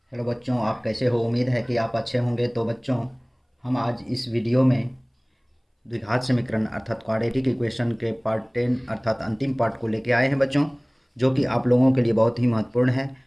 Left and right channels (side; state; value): both; identical; correlation 1.00